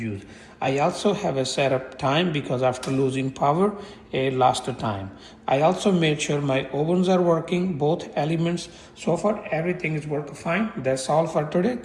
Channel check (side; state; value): both; identical; correlation 1.00